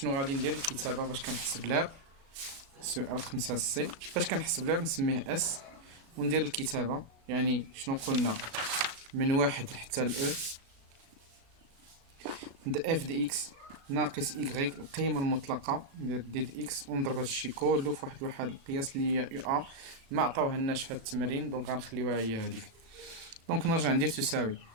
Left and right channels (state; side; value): late; left; 36 ms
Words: غادي ندير؟ الكتابة باش كنحسب لها سؤال 5 سي باش كنحسب لها نسميه اس وندير الكتابة. يعني شنو قلنا؟ من واحد حتى الاو د اف دي اكس ناقص ايكغيك القيمة المطلقة ندير دي د اكس ونضرب هادشي كلو في واحد القياس اللي هي يو ا ما عطاوهالناش في هاد التمرين دونك غنخليوها هي هاديك. دونك نرجع ندير تساوي